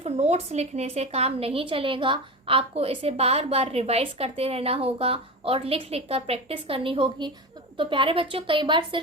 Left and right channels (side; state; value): both; normal; correlation 0.25